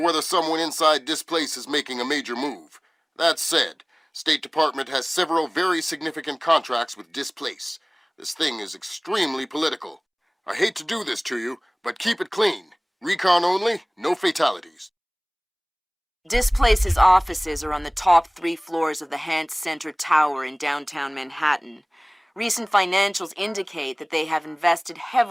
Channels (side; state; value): both; identical; correlation 1.00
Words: whether someone inside this place is making a major move. That said, State Department has several very significant contracts with Displace. This thing is extremely political. I hate to do this to you, but keep it clean. Recon only, no fatalities. Displace's offices are on the top 3 floors of the Hance Center Tower in downtown Manhattan. Recent financials indicate that they have invested